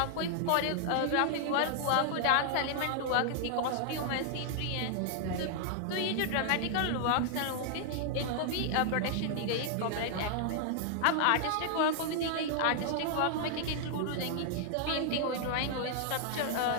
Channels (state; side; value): different; both; correlation 0.00